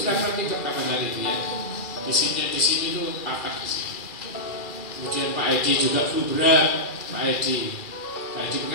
ditabrak pickup kapan hari itu ya. Di sini tuh patah di sini. Kemudian Pak Edi juga flu berat. Pak Edi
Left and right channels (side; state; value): right; late; 2.4 ms